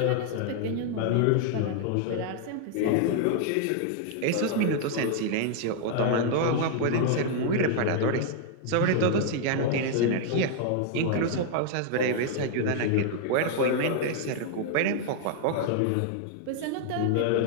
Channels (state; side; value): different; both; correlation 0.00